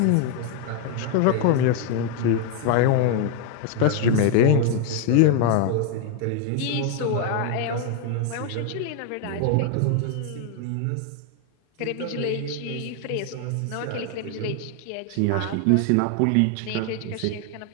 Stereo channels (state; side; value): different; both; correlation 0.01